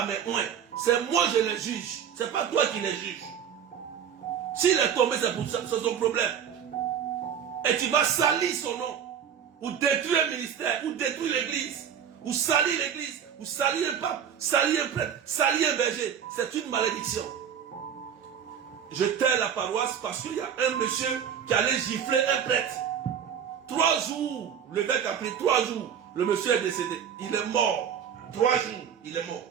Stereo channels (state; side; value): quieter; left; 8.3 dB